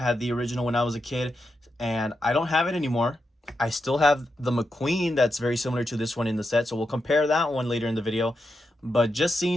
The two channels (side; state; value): both; normal; correlation 0.86